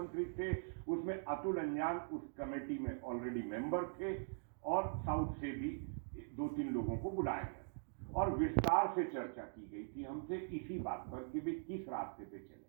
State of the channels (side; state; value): left; silent; digital silence